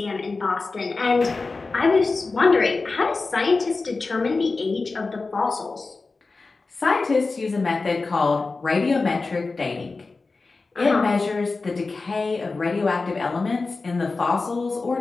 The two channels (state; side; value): quieter; right; 3.8 dB